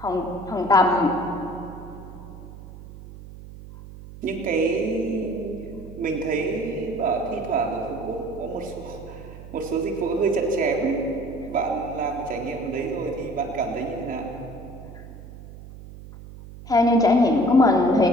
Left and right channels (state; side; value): noise; right; hum, 15 dB below the sound